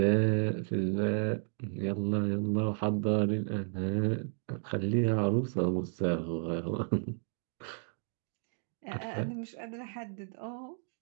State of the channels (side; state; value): left; silent; 56 dB below the other